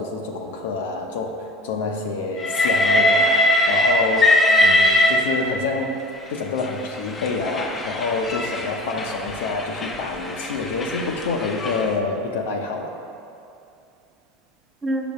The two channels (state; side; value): normal; both; correlation 0.40